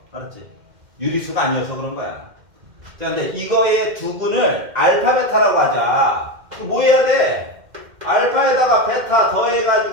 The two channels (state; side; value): late; left; 2.1 ms